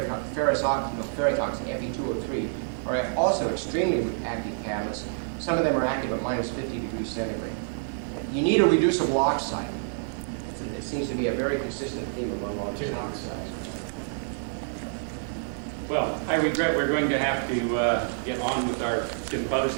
oxide, Fe2O3, are also extremely active catalysts. Some of them are active at minus 50 degrees centigrade. You need a reducible oxide. It seems to be a very consistent theme among all these oxides. Well, I regret we're going to have to get on with our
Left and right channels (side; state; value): left; silent; digital silence